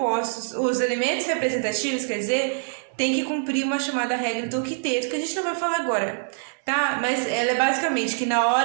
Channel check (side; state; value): left; silent; digital silence